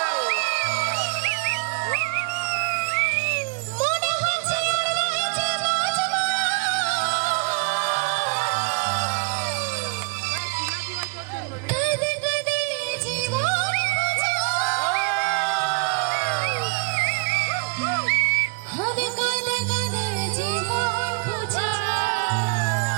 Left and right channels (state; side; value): quieter; left; 33.6 dB